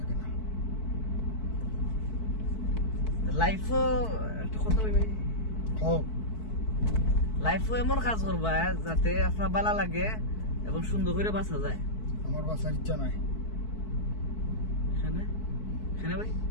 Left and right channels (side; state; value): right; late; 4.6 ms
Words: না লাইফও একটা কথা ভাই খাও লাইফও এমন কাজ করবা যাতে আপনার ভালো লাগে এবং সুন্দর করে বাঁচা যায় আমার বাসার ইচ্ছা নাই এখানে এখানে ভাই